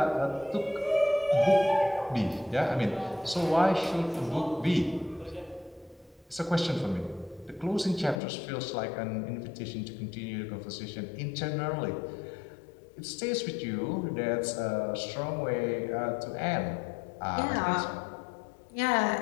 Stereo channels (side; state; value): right; drops out; at 8.2 s